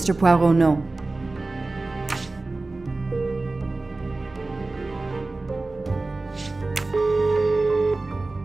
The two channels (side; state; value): left; quieter; 3.3 dB